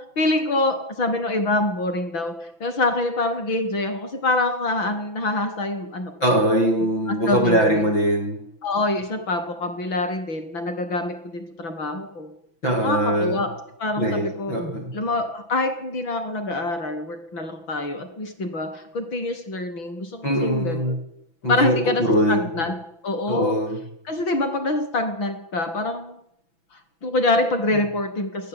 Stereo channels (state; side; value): late; right; 6.0 ms